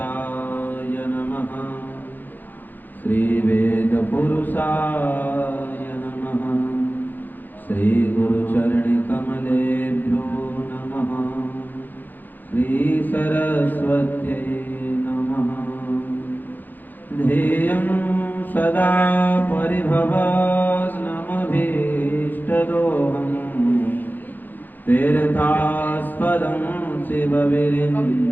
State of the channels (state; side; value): late; right; 0.087 ms